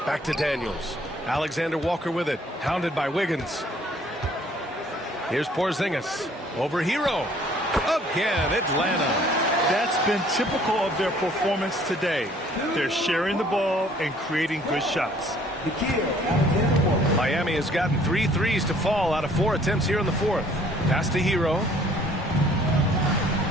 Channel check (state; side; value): normal; both; correlation 0.58